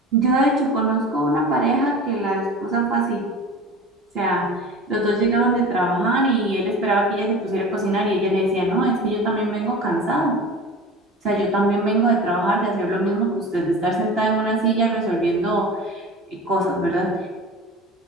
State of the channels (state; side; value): normal; both; correlation 0.35